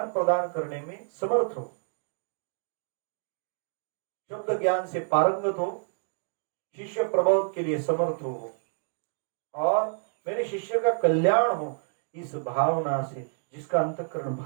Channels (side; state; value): left; silent; digital silence